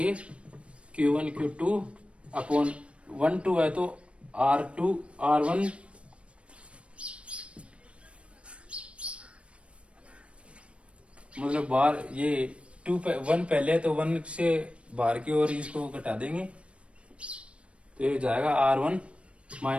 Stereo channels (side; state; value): left; late; 0.060 ms